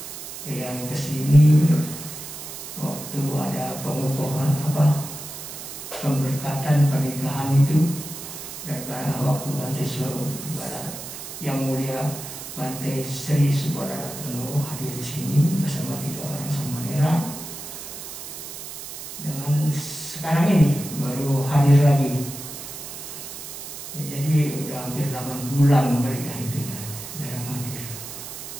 Yang ke sini waktu ada pengukuhan pemberkatan pernikahan itu, dan waktu Bante Subara yang mulia Bante Sri Subara Ratno hadir di sini bersama 3 orang samanera. Dengan sekarang ini baru hadir lagi. Ya, jadi udah hampir 8 bulan mereka itu ya jarang hadir.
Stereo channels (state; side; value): noise; right; hiss, 10 dB below the sound